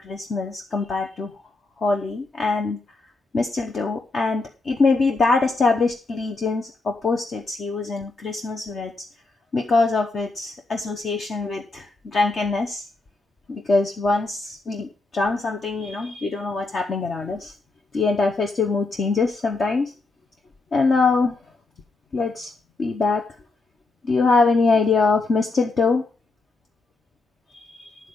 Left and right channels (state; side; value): quieter; right; 3.5 dB